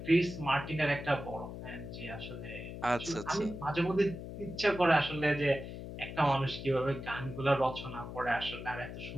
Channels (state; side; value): noise; left; hum, 9 dB below the sound